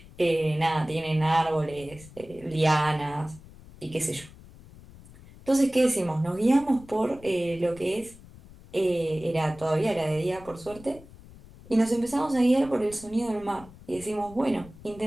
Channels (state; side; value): noise; left; rumble, 20 dB below the sound